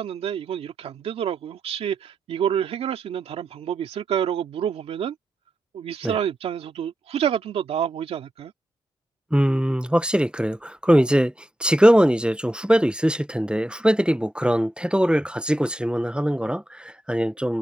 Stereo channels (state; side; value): normal; both; correlation 0.88